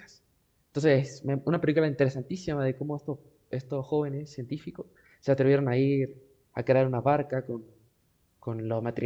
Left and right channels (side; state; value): both; identical; correlation 1.00